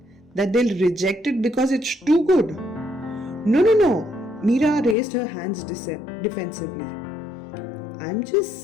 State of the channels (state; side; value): drops out; right; at 5.0 s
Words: That they'll reject it because it's too good? No. Meera raised her hands defensively. I'm just